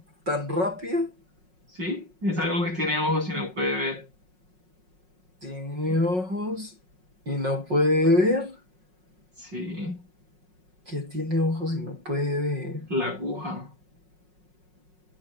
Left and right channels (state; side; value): late; left; 5.5 ms